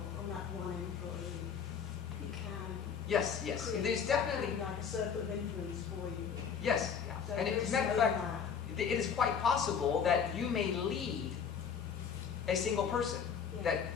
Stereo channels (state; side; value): quieter; right; 7.0 dB